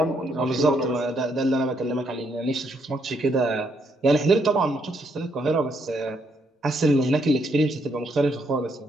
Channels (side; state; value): both; normal; correlation 0.74